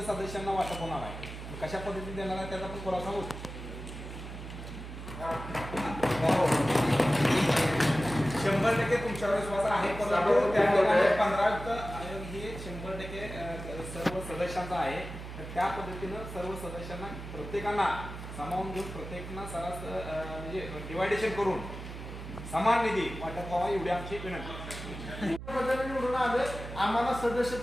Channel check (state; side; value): noise; right; hum, 10 dB below the sound